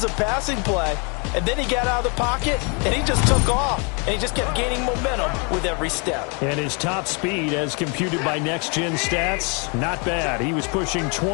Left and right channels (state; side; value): quieter; right; 34.0 dB